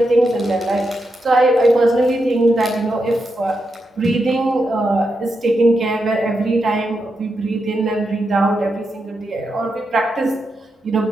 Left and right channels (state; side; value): normal; both; correlation 0.85